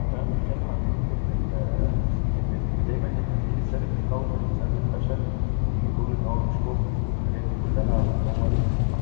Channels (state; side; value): silent; right; 62 dB below the other